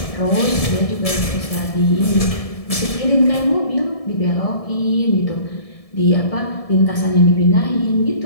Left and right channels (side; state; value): right; late; 1.7 ms